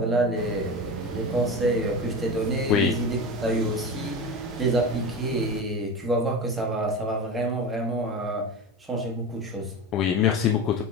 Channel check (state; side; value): normal; both; correlation 0.27